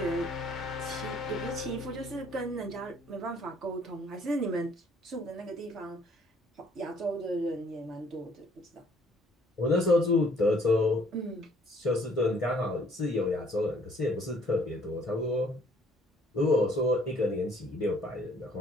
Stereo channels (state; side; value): normal; both; correlation 0.61